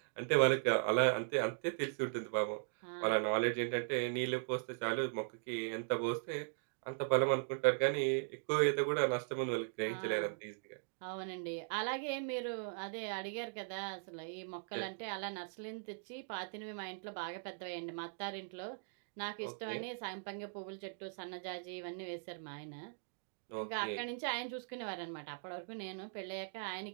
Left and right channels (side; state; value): left; silent; digital silence